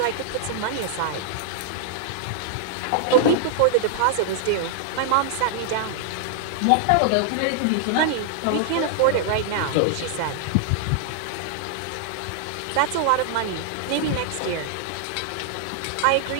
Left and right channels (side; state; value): both; different; correlation -0.01